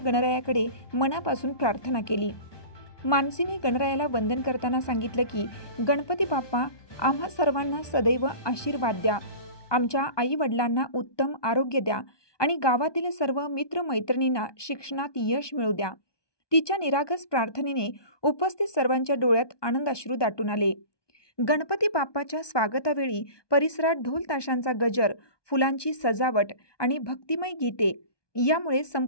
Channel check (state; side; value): late; right; 1.2 ms